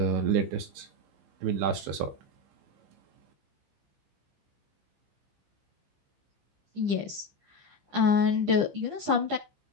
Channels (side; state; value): left; late; 15 ms